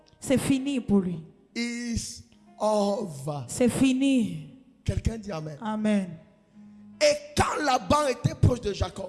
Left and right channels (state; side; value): identical; both; correlation 1.00